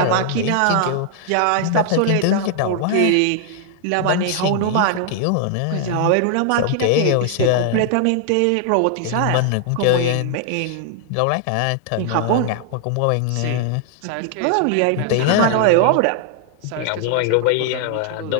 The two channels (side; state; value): both; different; correlation 0.00